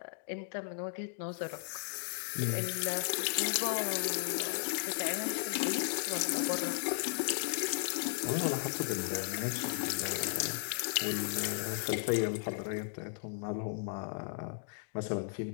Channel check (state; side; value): silent; right; digital silence